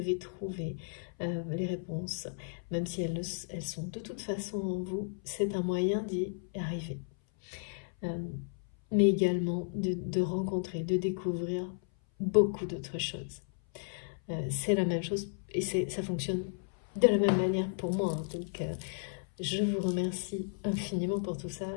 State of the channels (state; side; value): silent; right; 55 dB below the other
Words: trouver les réponses. Même si elles sont de toute façon en vous, c'est un moyen d'y arriver. Mais également de rencontrer, de découvrir beaucoup d'autres choses. C'est la même chose et ça fonctionne de la même manière pour moi. Hein. Donc, je vous remercie infiniment pour tout ça.